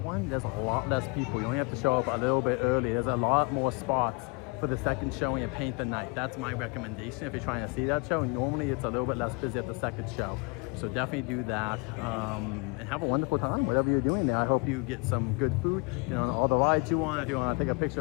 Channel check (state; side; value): quieter; right; 32.0 dB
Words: one. There's a lot less people. You only have to show up a little bit early. There's a lot more spots for the second showing of Paint the Night. That's my recommendation if you're trying to see that show. Normally it's a little bit less busy at the second show. So definitely do that and have a wonderful time, whatever you're doing there. I hope you get some good food, you know, on all the rides you want. If you want to take a picture